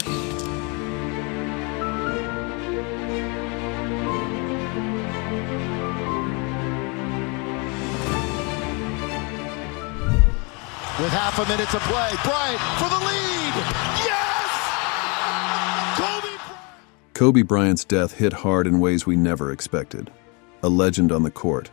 With half a minute to play, Bryant for the lead! Yes! Kobe Bryant's death hit hard in ways we never expected. A legend on the court,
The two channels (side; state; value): right; quieter; 31.8 dB